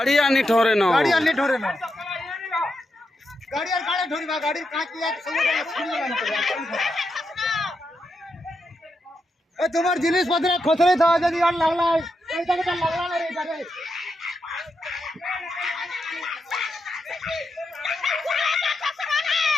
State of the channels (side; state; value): both; normal; correlation 0.85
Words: आनी ठोरे न गाड़ी आनी ठोरे न गाड़ी और गाड़ी ठोरी बा गाड़ी काट लिया सब ए तुम्हार जिनिस पत्र खोसरे था यदि और लगला ऐसा के लगला रे इधर लागला